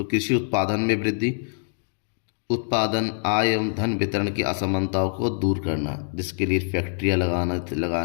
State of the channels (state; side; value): silent; right; digital silence